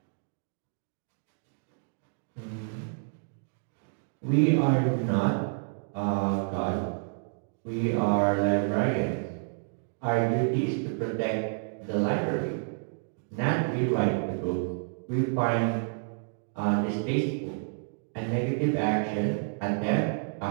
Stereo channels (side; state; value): left; silent; digital silence